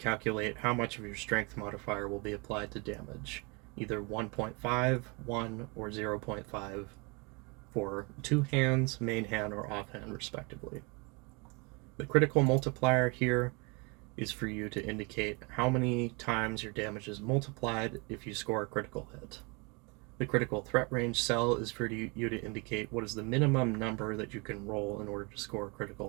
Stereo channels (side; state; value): left; quieter; 30.0 dB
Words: how much of your strength modifier will be applied to damage, either 1.5, 1, or 0.5 for 2 hands, main hand, or offhand respectively. The critical multiplier here is for you to indicate how many times your damage is multiplied if you score a critical hit. The critical threat range cell is for you to indicate what is the minimum number that you can roll in order to score a